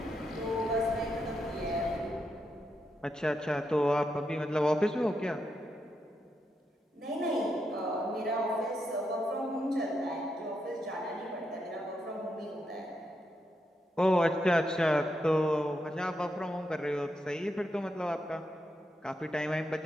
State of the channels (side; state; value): both; normal; correlation 0.83